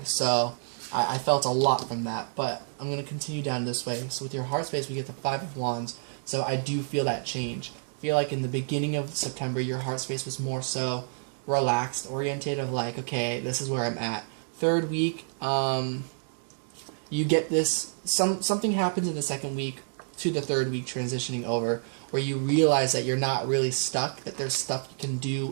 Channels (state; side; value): silent; left; digital silence